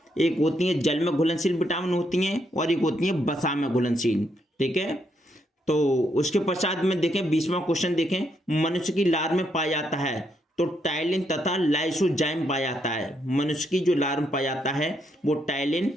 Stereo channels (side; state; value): both; normal; correlation 0.76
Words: एक होती है जल में घुलनशील विटामिन होती हैं और एक होती है वसा में घुलनशील। ठीक है, तो उसके पश्चात में देखें 20वां क्वेश्चन देखें, मनुष्य की लार में पाया जाता है तो टाइलिन तथा लाइसोजाइम पाया जाता है। मनुष्य की जो लार में पाया जाता है वो टाइलिन